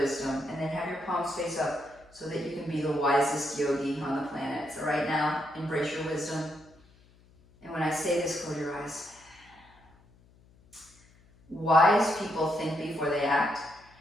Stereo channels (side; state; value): left; noise; hum, 28 dB below the sound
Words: And then have your palms face up so that you can be the wisest yogi on the planet. So right now, embrace your wisdom. And when I say this, close your eyes. Wise people think before they act.